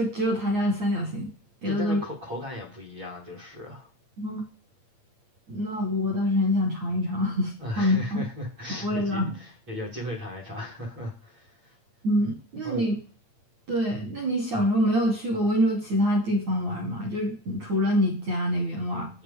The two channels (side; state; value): left; late; 8.7 ms